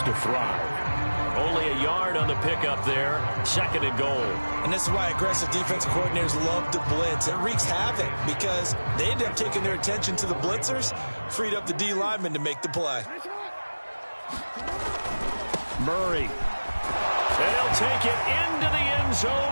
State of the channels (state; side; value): inverted; both; correlation -1.00